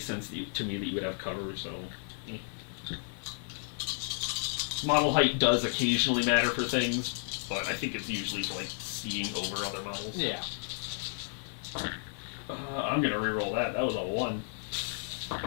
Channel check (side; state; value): right; silent; 56 dB below the other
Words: sense to me that you would have cover, so... Model height does occasionally matter for things, but I think it's usually for, like, seeing over other models. Yeah. I'm gonna reroll that. That was a 1.